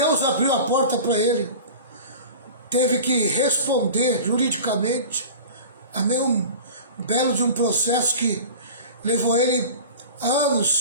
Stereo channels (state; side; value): inverted; both; correlation -0.36